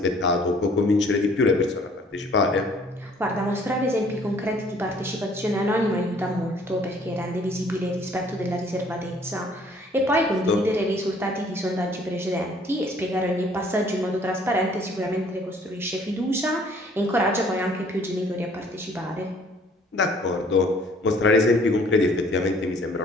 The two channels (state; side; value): normal; both; correlation 0.58